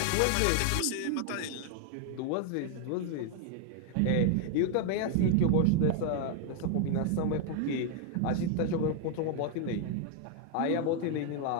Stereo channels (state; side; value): different; both; correlation 0.00